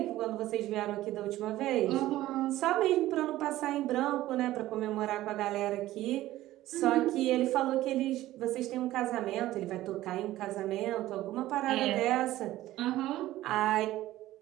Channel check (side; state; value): left; quieter; 15.4 dB